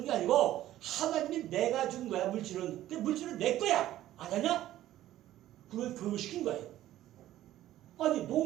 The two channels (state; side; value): quieter; left; 13.8 dB